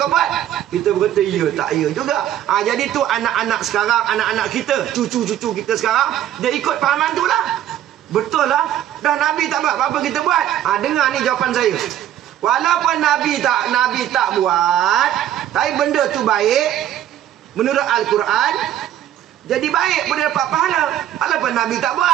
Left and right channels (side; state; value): left; quieter; 11.6 dB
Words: buat? Kita berkata, iya tak iya juga. Jadi tu anak-anak sekarang, anak-anak kita, cucu-cucu kita sekarang, dia ikut fahaman tu lah. Betul lah. Dah Nabi tak buat, apa kita buat? Dengar ni jawapan saya. Walaupun Nabi tak buat, tapi benda tu baik menurut Al-Quran, jadi baik, boleh dapat pahala. Walaupun Nabi tak